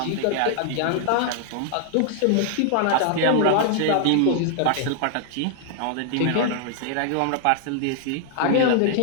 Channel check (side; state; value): both; different; correlation 0.00